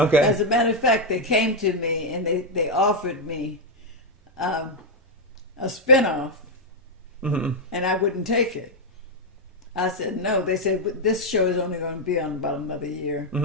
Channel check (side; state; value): both; normal; correlation 0.00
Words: As a matter of fact, they came to me and they offered me a spinoff, and I wouldn't take it. I said no. They said this show is only going to be on about another year.